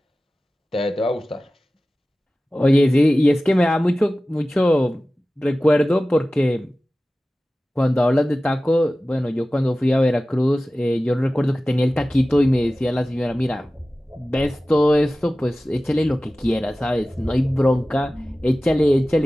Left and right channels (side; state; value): both; normal; correlation 0.96